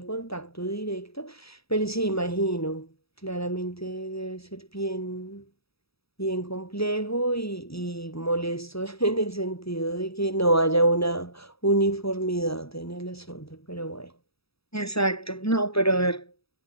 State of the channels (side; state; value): right; late; 0.77 ms